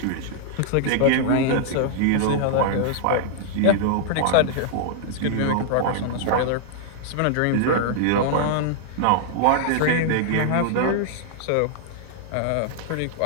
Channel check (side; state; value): both; different; correlation -0.01